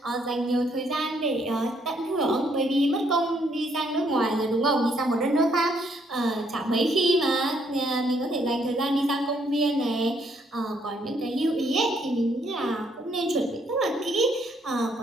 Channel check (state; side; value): normal; both; correlation 0.70